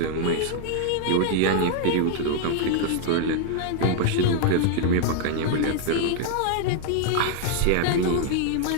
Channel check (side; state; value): both; different; correlation 0.00